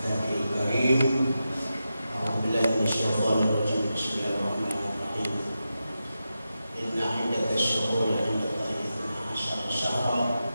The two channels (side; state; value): both; inverted; correlation -0.90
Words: karim. A'udzu billahi minasyaitonir rajim. Bismillahirrahmanirrahim. Inna 'iddatash shuhuri 'inda Allahi 12 syahran